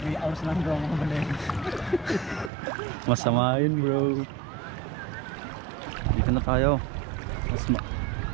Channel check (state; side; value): drops out; left; at 2.5 s